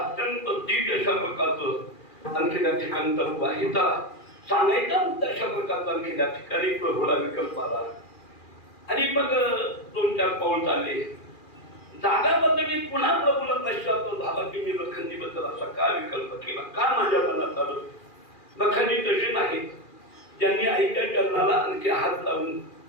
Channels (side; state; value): right; late; 2.4 ms